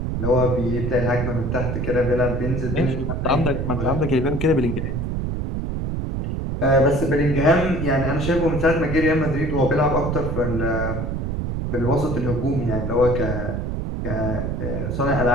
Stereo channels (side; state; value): right; noise; rumble, 2 dB below the sound